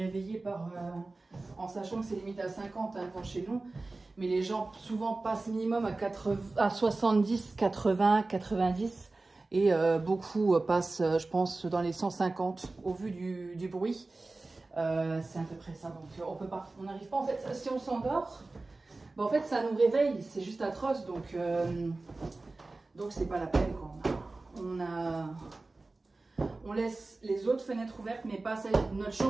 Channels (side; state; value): left; quieter; 3.3 dB